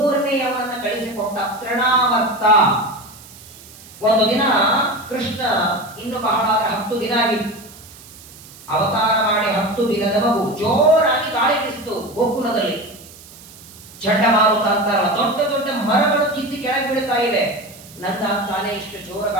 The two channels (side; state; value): right; noise; hiss, 20 dB below the sound